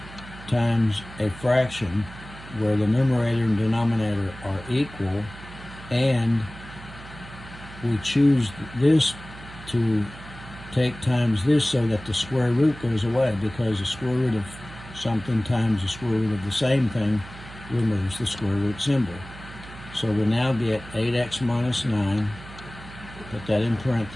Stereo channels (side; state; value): right; noise; hum, 16 dB below the sound